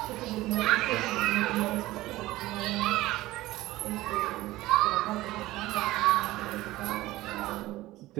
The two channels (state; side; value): quieter; left; 17.6 dB